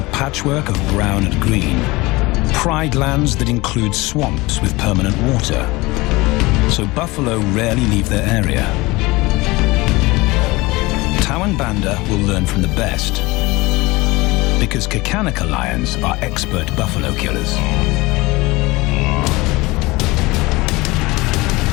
patchwork of brown and green. Pride lands that include swamps with permanent water. So buffalo rarely leave their area. Tao and Banda will learn from the best, because Kakanaka lions are expert buffalo killers.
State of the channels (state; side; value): quieter; right; 22.2 dB